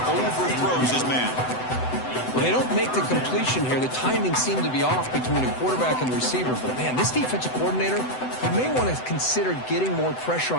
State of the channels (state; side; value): late; right; 7.9 ms